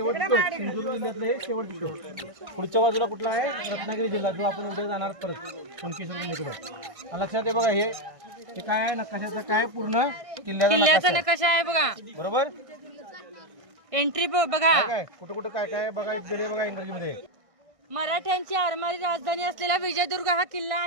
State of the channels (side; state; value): left; late; 1.6 ms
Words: टोक, सिंधुदुर्ग जिल्ह्यातलं हे शेवटचं टोक. पुढच्या बाजूला कुठला आहे? रत्नागिरी जिल्हा, जो आपण उद्या जाणार परत कुणकेश्वर इकडे. लक्षात आहे बघा, हे काय आहे, नकाशाचं काय पूर्ण किल्ल्याचा नकाशा आहे बघा. बरोबर. एंट्री बघा, काय कुठं कुठं काय काय बघा, इकडे बघा इंग्रजीमध्ये. मराठ्यांची आरमारी राजधानी असलेला विजयदुर्ग हा किल्ला